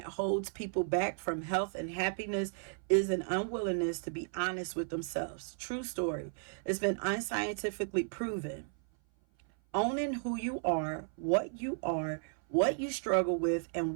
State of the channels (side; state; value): left; silent; 55 dB below the other